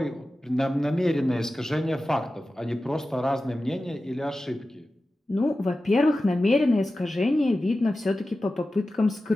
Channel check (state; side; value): normal; both; correlation 0.94